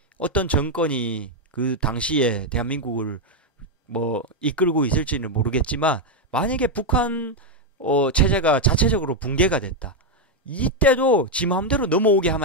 어떤 정권이 그 당시에 대한민국을 뭐 이끌고 있을지는 모르겠지만 만약에 북한 체제가 자체적으로 붕괴가 됐다. 이때도 지 마음대로 넘어오게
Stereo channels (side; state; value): both; normal; correlation 0.02